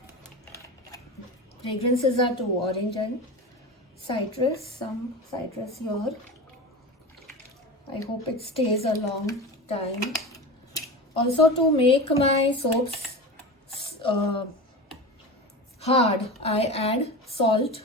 Fragrances are two, orange and citrus. Some citrus here. I hope it stays a long time. Also, to make my soaps hard, I add salt.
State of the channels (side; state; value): both; normal; correlation 0.27